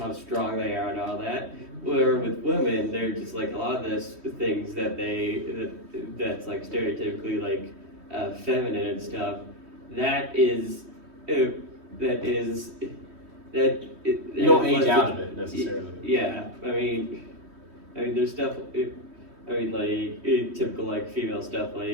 strong they are and all that. Where with women, they're just like a lot of those things that's like stereotypically like feminine and stuff. You don't age out of it necessarily. Yeah, I mean, there's stuff. Like typical like female stuff,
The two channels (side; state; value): left; late; 3.1 ms